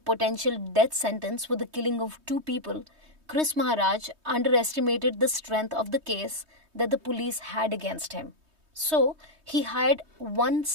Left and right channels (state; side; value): late; left; 3.2 ms